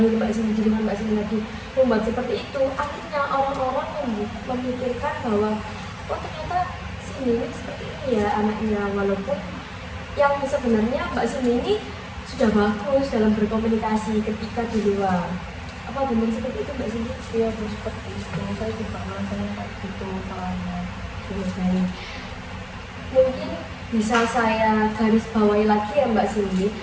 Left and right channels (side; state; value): both; identical; correlation 1.00